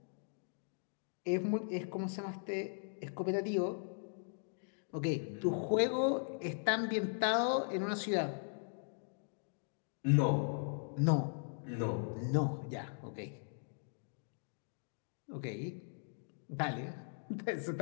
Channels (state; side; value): silent; right; digital silence